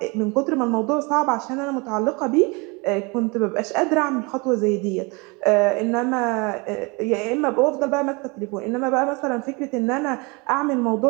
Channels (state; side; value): quieter; left; 28.4 dB